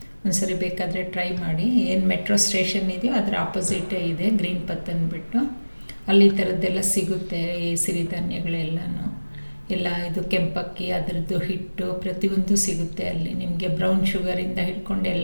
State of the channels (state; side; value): inverted; both; correlation -1.00